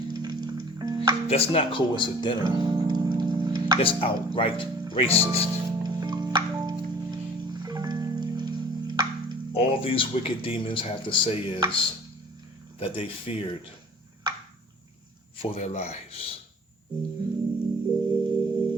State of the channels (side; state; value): both; normal; correlation 0.48